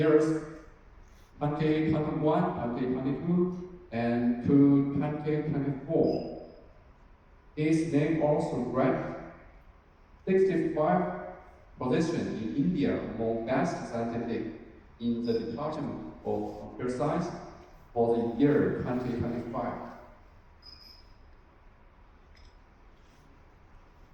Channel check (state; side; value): identical; both; correlation 1.00